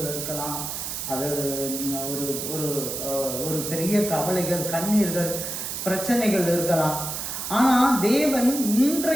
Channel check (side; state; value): right; noise; hiss, 5 dB below the sound